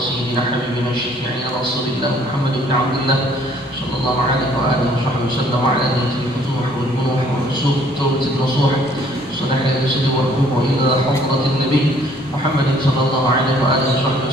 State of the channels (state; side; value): normal; both; correlation 0.60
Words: حبيبنا شفيعنا رسول الله محمد بن عبد الله صلى الله عليه وآله وصحبه وسلم وعلى نية الفتوح والبنوح والرسوخ والتوبة النصوح صلح الرسل والركوع إلى حضرة النبي محمد صلى الله عليه وآله وصحبه